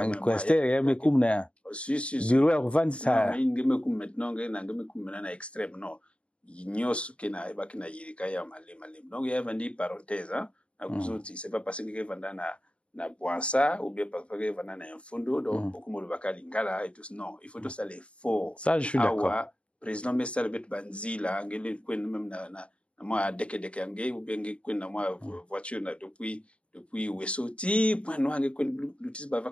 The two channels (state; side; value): late; right; 0.060 ms